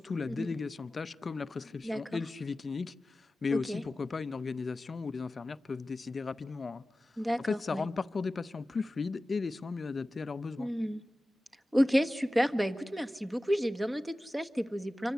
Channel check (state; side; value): normal; both; correlation 0.96